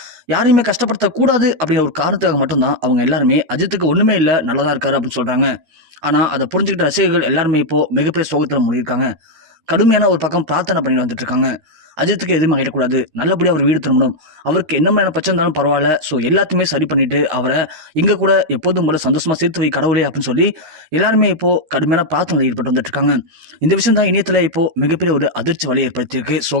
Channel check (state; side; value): late; left; 13 ms